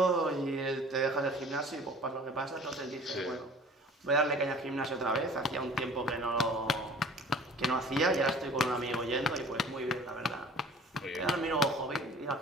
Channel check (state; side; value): normal; both; correlation 0.46